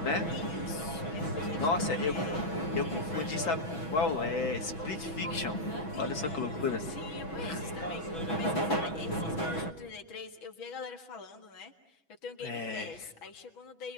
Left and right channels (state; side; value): late; right; 6.2 ms